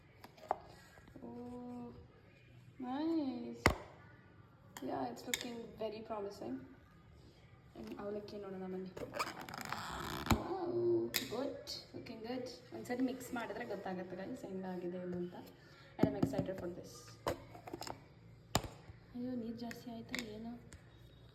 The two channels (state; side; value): identical; both; correlation 1.00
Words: Nice. Yeah, it's looking very promising. And ಅವಲಕ್ಕಿ ನೋಡೋಣ ಬನ್ನಿ. Wow, good. Looking good. ಒಂದ್ಸರಿ ಮಿಕ್ಸ್ ಮಾಡಿದ್ರೆ ಗೊತ್ತಾಗುತ್ತೆ ಗೈಸ್ ಹೆಂಗಾಗಿದೆ ಇದು ಅಂತ. And I'm excited for this. ಅಯ್ಯೋ ನೀರು ಜಾಸ್ತಿ ಆಯ್ತಾ ಏನು?